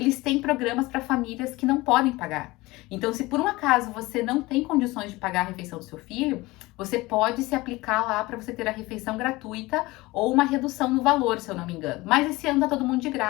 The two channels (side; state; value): right; quieter; 20.9 dB